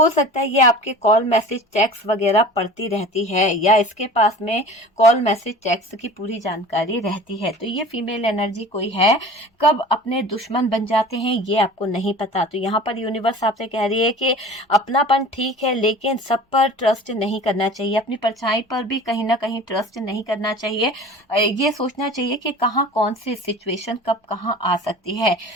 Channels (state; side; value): normal; both; correlation 0.40